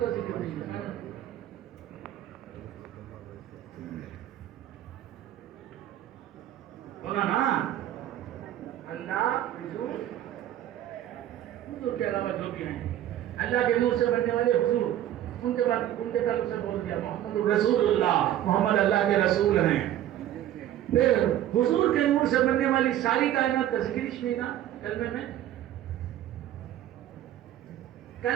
ذکر نہیں ہے. بولا نا اللہ حضور کے علاوہ جو بھی ہیں اللہ کے نور سے بننے والے حضور ان کے بعد اسے بول دیا محمد رسول اللہ، محمد اللہ کے رسول ہیں. پھر حضور کے نور سے بننے والی ساری کائنات کا ذکر ہی نہیں نا کلمے میں.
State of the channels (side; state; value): left; quieter; 12.2 dB